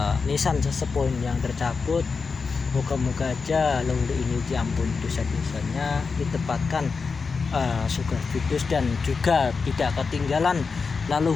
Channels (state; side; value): quieter; right; 4.9 dB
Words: nisan sesepuh yang tercabut, moga-moga aja leluhur ini diampuni dosa-dosanya, ditempatkan surga Firdaus, dan juga tidak ketinggalan